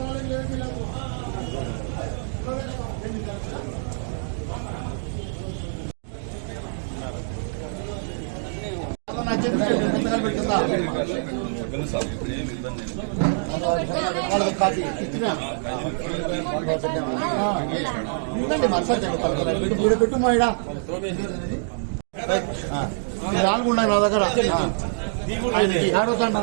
పెట్టు మా ఇడ 4 ఉన్నాయి నా దగ్గర.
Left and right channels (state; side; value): silent; left; digital silence